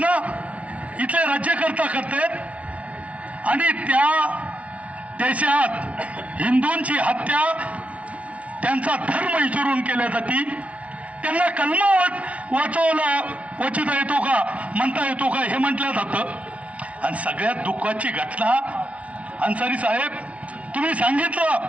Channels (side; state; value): left; late; 0.065 ms